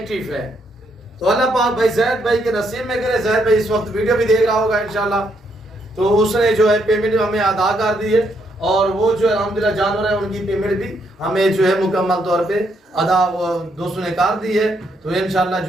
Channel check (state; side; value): normal; both; correlation 0.75